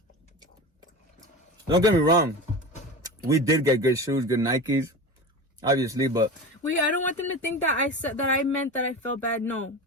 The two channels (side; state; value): both; normal; correlation 0.29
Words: Don't get me wrong, we did get good shoes, good Nikes, obviously, but wait, I don't want them to think that I meant that I felt bad. No,